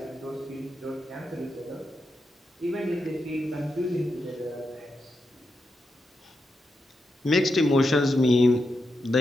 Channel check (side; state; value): both; normal; correlation 0.86